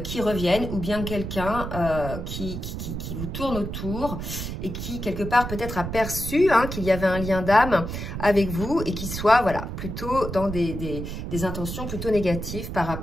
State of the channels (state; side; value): noise; right; rumble, 6 dB below the sound